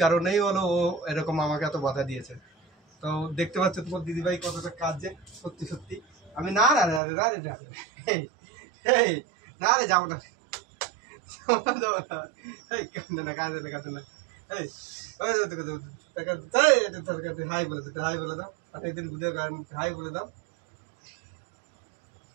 কারণেই হলো ও এরকম আমাকে এত বাধা দিয়েছে। তো দেখতে পাচ্ছ তোমার দিদিভাই কতটা কাজে, সত্যি সত্যি। আমি না না না রে, না রে, না রে, এই না রে, যাবো না, যাবো না, এই কাঁদে না, কাঁদে না, কাঁদে না, এই হাই বলে দিতে, হাই বলে দাও, অনেকদিন ভিডিও হাই বলে দাও।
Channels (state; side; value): drops out; left; at 7.0 s